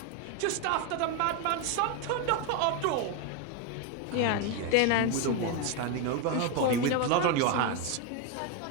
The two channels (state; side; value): different; both; correlation 0.02